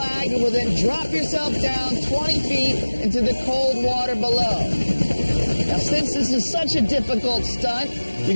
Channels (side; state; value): both; inverted; correlation -1.00